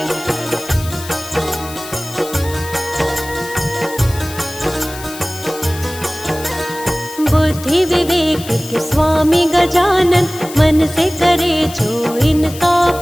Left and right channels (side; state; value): left; noise; hiss, 14 dB below the sound